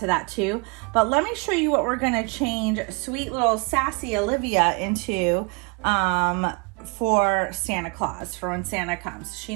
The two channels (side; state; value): left; quieter; 31.9 dB